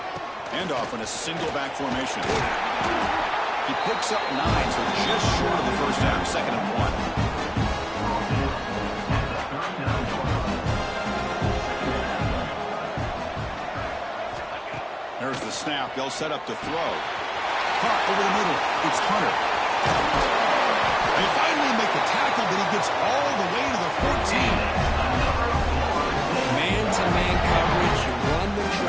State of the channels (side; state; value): both; identical; correlation 1.00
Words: Handoff in a single back formation. He picks up 9, so just short of the first down. 2nd and 1. There's the snap. They'll set up to throw. Caught over the middle. It's Hunter. They finally make the tackle, but he gets all the way to the 14. Man-to-man coverage. You run the